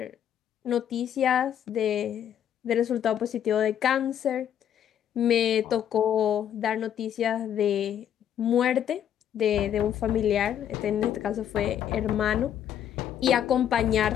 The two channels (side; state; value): right; quieter; 9.7 dB